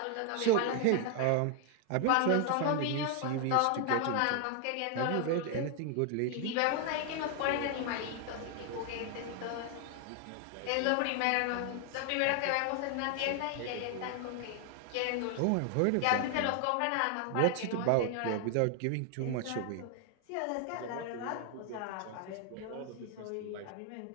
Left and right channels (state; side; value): different; both; correlation 0.00